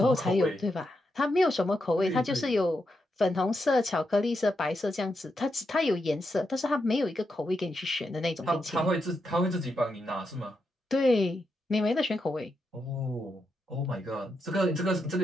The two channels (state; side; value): normal; both; correlation 0.84